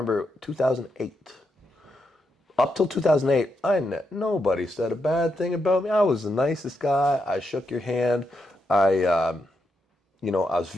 2008. Up till 2008, nobody said a bad thing about me. I was the nicest guy. I shook your hand. I, I was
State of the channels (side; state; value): both; normal; correlation 0.82